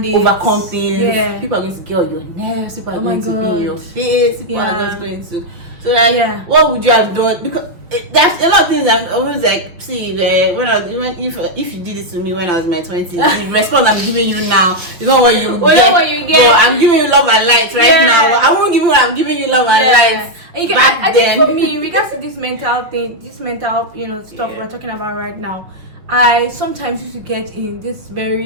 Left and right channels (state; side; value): late; left; 5.5 ms